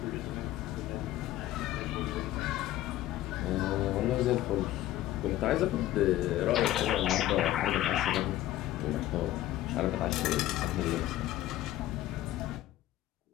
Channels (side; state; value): right; quieter; 14.5 dB